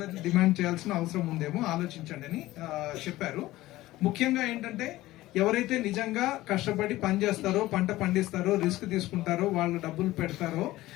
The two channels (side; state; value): right; quieter; 17.0 dB